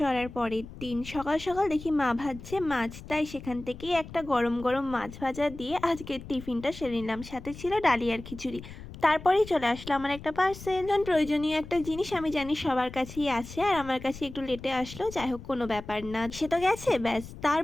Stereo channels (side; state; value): left; noise; rumble, 14 dB below the sound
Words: পরের দিন। সকাল সকাল দেখি মা ভাজছে মাছ, তাই সেখান থেকেই একটা গরম গরম মাছ ভাজা দিয়ে আজকের টিফিনটা সেরে নিলাম। সাথে ছিল ডালি আর খিচুড়ি। তারপরেই চলে আসলো আমার একটা পার্সেল। প্রয়োজনীয় একটা জিনিস আমি জানি সবার কাছেই আছে, আর আমার কাছে একটু লেটে আসলো, যাই হোক কোনো ব্যাপার না, সে তো গেছে ব্যাস।